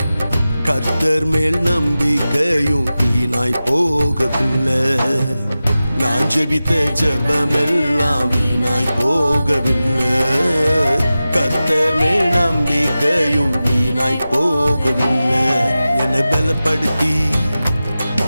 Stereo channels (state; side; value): inverted; both; correlation -0.95